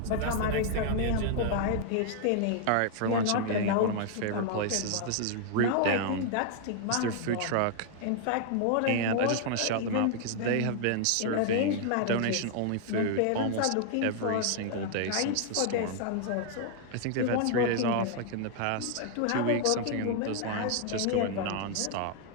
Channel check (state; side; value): different; both; correlation 0.00